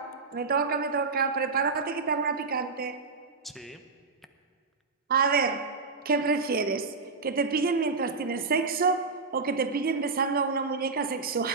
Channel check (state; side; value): quieter; left; 4.4 dB